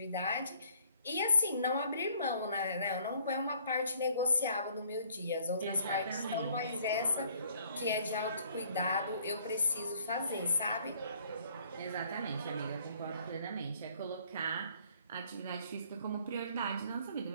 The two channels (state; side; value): inverted; both; correlation -0.60